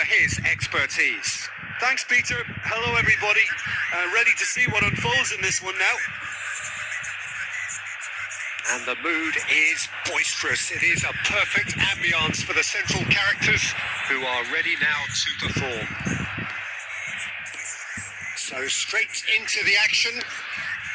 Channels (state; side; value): identical; both; correlation 1.00